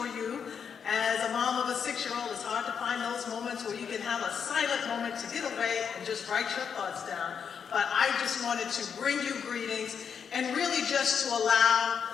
you. As a mom of a 6-year-old, it's hard to find those moments where you can have a silent moment to get away and just write your thoughts down. But I just wanted to bring you greetings and really just to allow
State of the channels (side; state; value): right; quieter; 7.0 dB